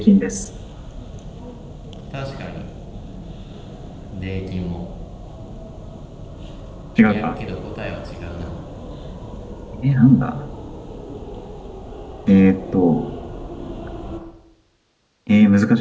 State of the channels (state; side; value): identical; both; correlation 1.00